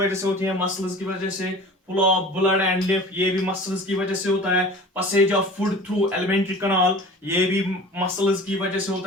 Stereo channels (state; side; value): normal; both; correlation 0.41